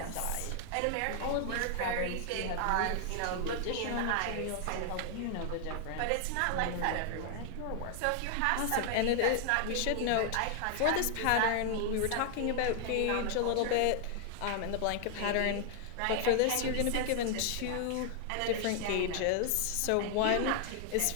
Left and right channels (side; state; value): both; different; correlation 0.00